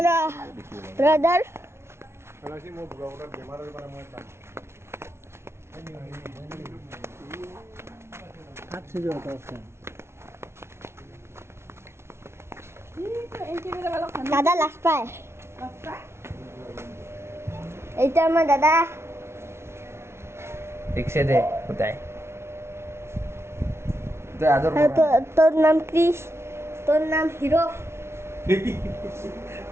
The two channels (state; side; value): late; left; 0.12 ms